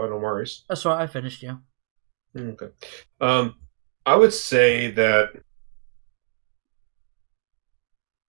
No worries. That's right. I finished. Yeah. Okay. I would say that.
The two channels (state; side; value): quieter; left; 38.7 dB